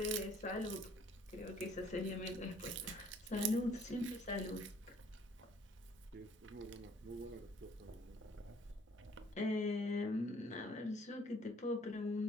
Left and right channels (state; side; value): normal; both; correlation 0.59